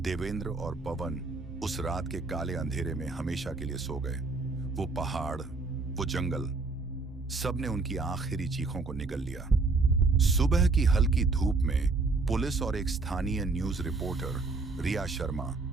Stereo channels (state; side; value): quieter; left; 3.7 dB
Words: देवेंद्र और पवन, उस रात के काले अंधेरे में हमेशा के लिए सो गए। वो पहाड़, वो जंगल, सबने उनकी आखिरी चीखों को निगल लिया। सुबह की हल्की धूप में पुलिस और एक स्थानीय news reporter Riya Sharma